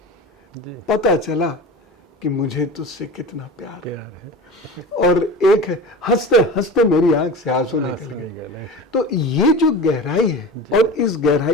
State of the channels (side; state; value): both; normal; correlation 0.32